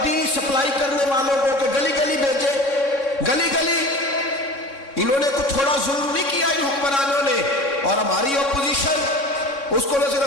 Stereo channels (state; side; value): late; right; 3.6 ms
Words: دی سپلائی کرنے والوں کو کہ گلی گلی بھیجے، گلی گلی۔ انہوں نے کچھ تھوڑا ظلم نہیں کیا ان حکمرانوں نے، اور ہماری اپوزیشن اس کو